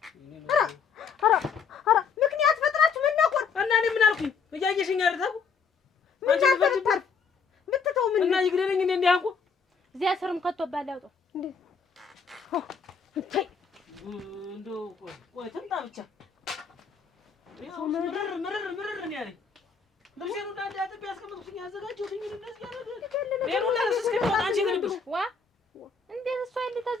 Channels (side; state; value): right; quieter; 5.5 dB